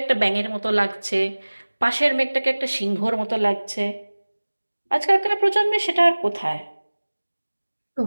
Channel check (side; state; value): both; inverted; correlation -1.00